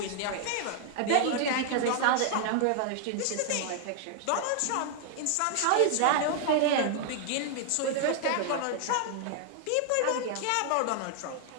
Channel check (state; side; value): different; both; correlation 0.00